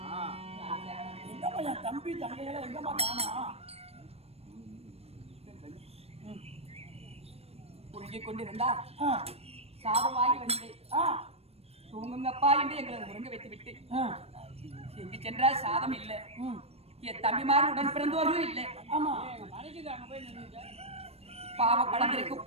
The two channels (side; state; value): left; late; 0.29 ms